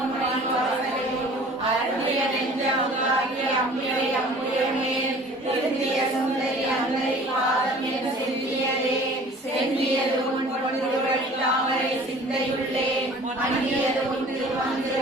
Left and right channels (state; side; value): normal; both; correlation 0.47